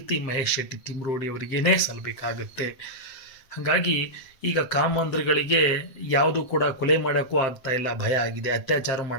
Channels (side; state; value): right; late; 7.6 ms